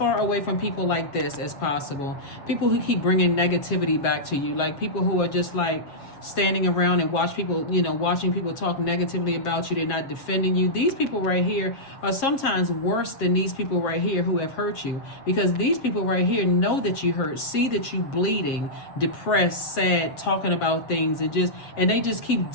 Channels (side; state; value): right; late; 7.4 ms